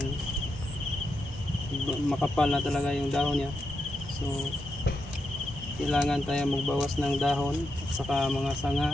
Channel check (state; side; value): normal; both; correlation 0.85